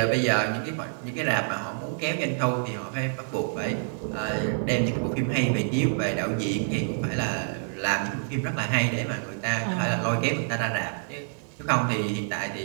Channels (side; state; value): left; silent; 60 dB below the other